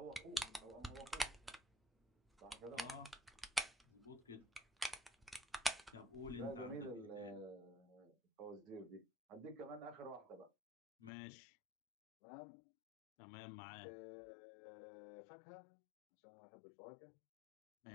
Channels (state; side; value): drops out; right; at 11.1 s